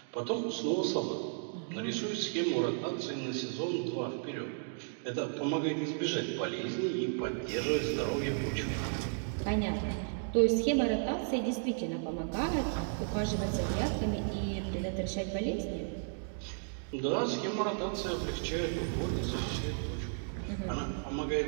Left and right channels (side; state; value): left; silent; digital silence